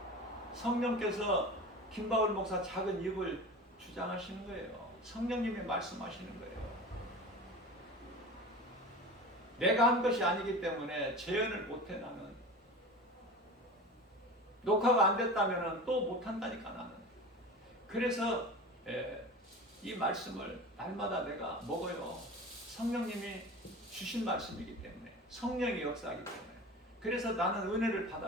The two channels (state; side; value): normal; both; correlation 0.33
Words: 성령께서 김바울 목사 작은 입을 주장하시는 거예요. 성령님이 말씀하시는 거예요. 내가 한 것이 아니기 때문에 재현을 못해. 나는 녹화가 안 됐다면 또 못한다니까. 나는 그래서 이 말씀을 날마다 내가 먹어요. 성령님이 주신 말씀이기 때문에, 성령이 역사하기 때문에. 그래서 나는 은혜를